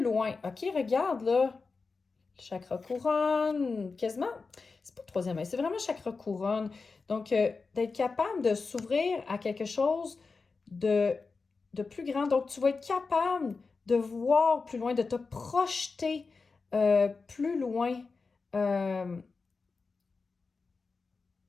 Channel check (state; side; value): quieter; right; 4.4 dB